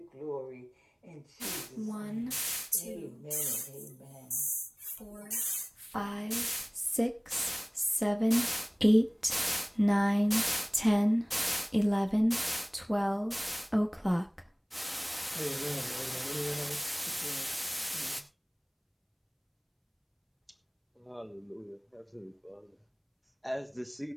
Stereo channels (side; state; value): both; identical; correlation 1.00